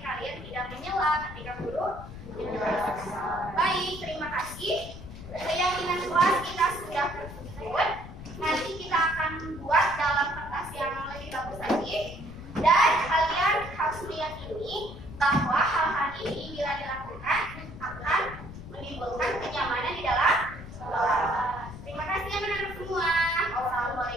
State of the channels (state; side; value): noise; left; rumble, 13 dB below the sound